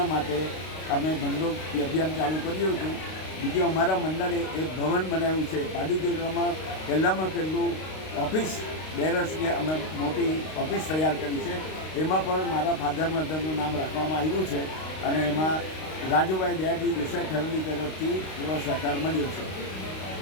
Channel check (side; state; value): right; late; 32 ms